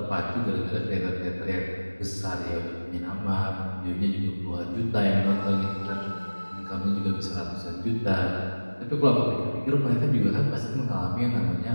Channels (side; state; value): both; inverted; correlation -1.00